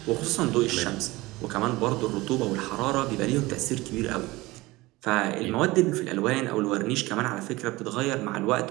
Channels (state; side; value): quieter; left; 20.4 dB